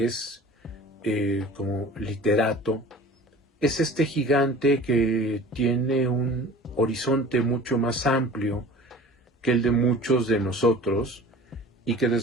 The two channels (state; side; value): normal; both; correlation 0.43